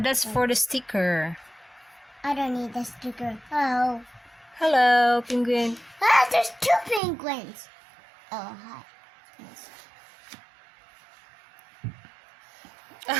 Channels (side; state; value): left; drops out; at 7.0 s